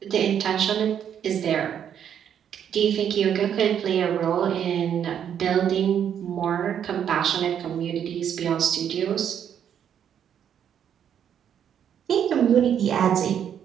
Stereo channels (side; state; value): left; quieter; 8.9 dB